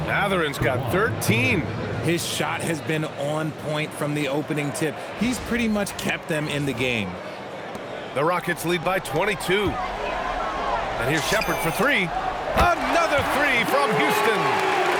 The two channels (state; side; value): identical; both; correlation 1.00